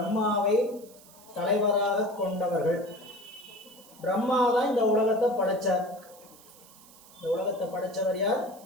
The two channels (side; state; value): right; noise; hiss, 23 dB below the sound